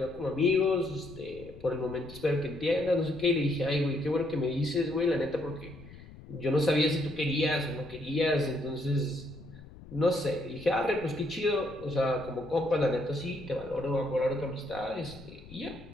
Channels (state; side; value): noise; left; rumble, 18 dB below the sound